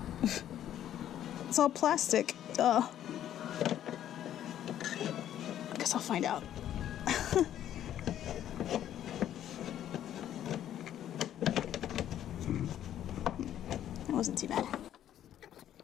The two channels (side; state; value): right; quieter; 11.2 dB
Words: It's all plastic. Duh. I guess I'll find out. That wasn't too bad.